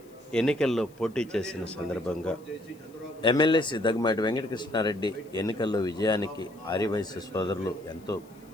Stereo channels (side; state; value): left; noise; hiss, 29 dB below the sound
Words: ఎన్నికల్లో పోటీ చేసిన సందర్భంగా ఎమ్మెల్యే శ్రీ దగ్గుమాటి వెంకటకృష్ణారెడ్డి ఎన్నికల్లో విజయానికి ఆర్యవైశ్య సోదరులు ఎంతో